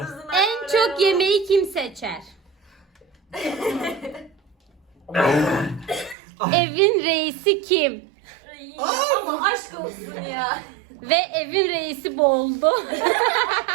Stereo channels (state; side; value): drops out; left; at 6.2 s